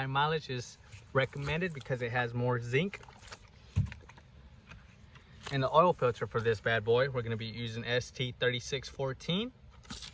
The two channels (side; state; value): both; identical; correlation 1.00